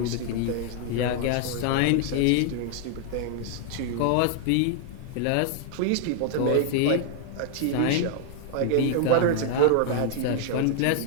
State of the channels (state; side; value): different; both; correlation 0.00